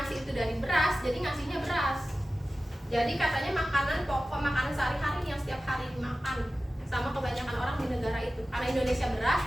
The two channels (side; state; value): both; normal; correlation 0.95